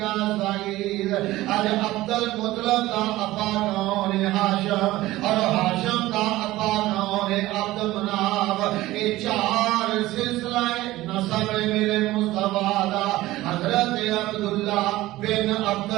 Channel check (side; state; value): left; quieter; 17.1 dB